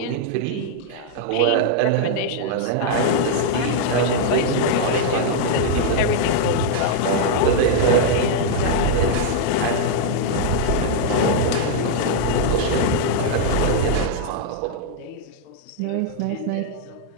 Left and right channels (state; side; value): different; both; correlation -0.01